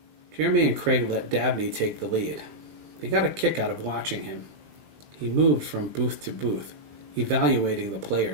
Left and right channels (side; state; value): left; late; 20 ms